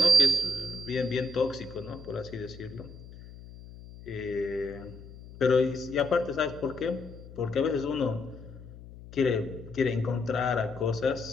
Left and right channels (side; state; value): left; noise; hum, 16 dB below the sound